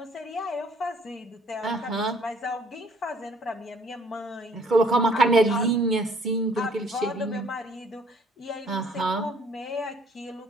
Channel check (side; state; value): both; normal; correlation 0.60